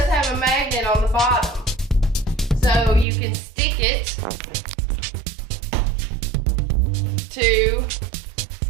have a magnet on the bottom. So you can stick it to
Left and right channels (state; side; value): drops out; left; at 3.1 s